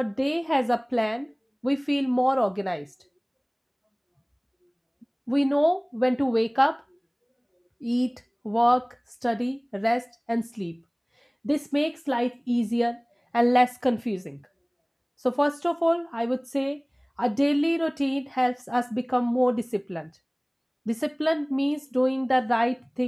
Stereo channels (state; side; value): identical; both; correlation 1.00